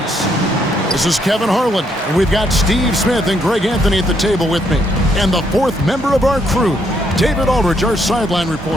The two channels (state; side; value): normal; both; correlation 0.73